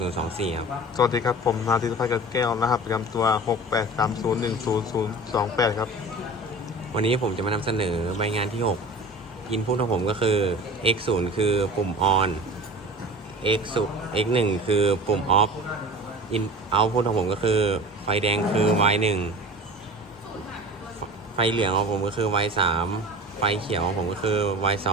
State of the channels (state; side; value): normal; both; correlation 0.37